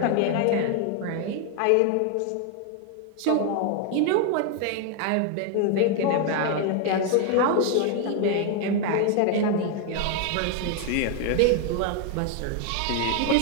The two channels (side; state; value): both; different; correlation 0.01